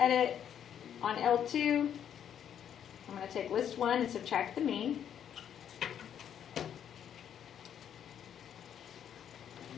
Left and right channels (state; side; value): quieter; right; 9.2 dB